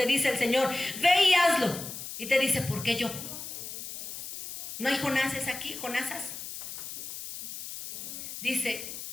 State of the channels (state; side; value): noise; left; hiss, 9 dB below the sound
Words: dice el Señor, ve y hazlo. Y te dice, ¿por qué yo? ¿No hay Jonases aquí, Jonasas? Dice